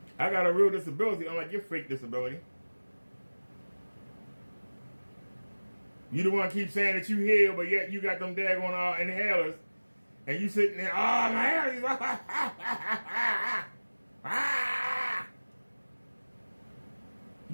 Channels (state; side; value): inverted; both; correlation -1.00